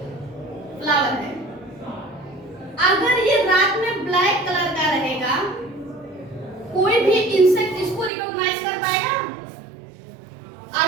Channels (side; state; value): left; drops out; at 8.1 s